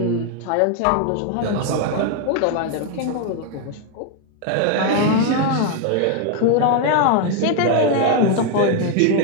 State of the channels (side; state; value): both; different; correlation 0.01